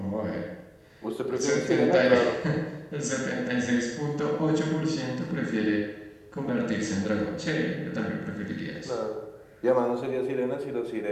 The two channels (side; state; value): both; identical; correlation 1.00